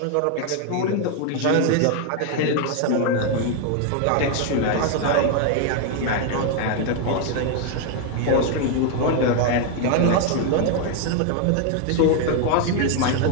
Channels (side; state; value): both; different; correlation 0.01